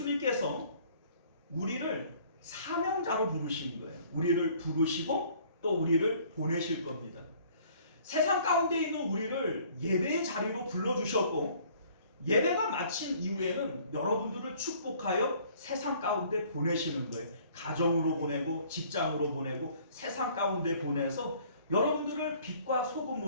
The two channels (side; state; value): both; inverted; correlation -0.56